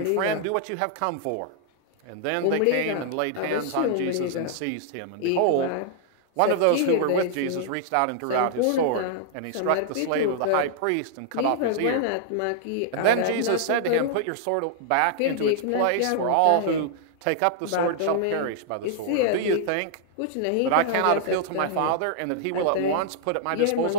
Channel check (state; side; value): different; both; correlation -0.01